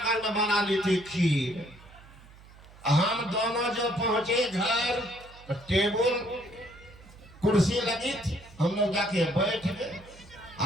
में बना ली थी खीर। हम दोनों जो पहुंचे घर, तो टेबल कुर्सी लगी थी, हम लोग जाके बैठ गए।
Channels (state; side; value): noise; right; hum, 22 dB below the sound